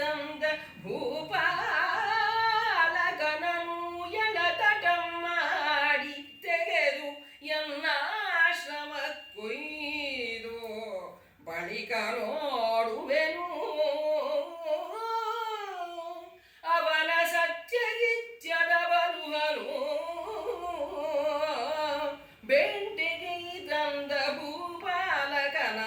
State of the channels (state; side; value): identical; both; correlation 1.00